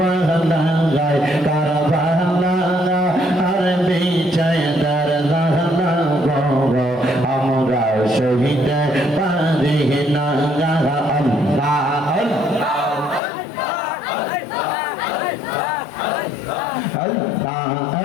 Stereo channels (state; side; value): drops out; right; at 13.2 s